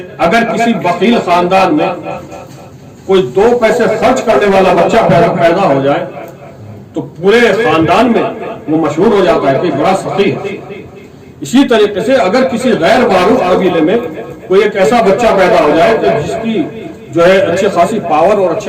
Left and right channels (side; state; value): both; identical; correlation 1.00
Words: اگر کسی بخیل خاندان میں کوئی 2 پیسے خرچ کرنے والا بچہ پیدا ہو جائے تو پورے خاندان میں وہ مشہور ہو جاتا ہے کہ بڑا سخی ہے۔ اسی طریقے سے اگر کسی غیر معروف قبیلے میں کوئی ایک ایسا بچہ پیدا ہو جائے کہ جس کی جو ہے اچھی خاصی پاور اور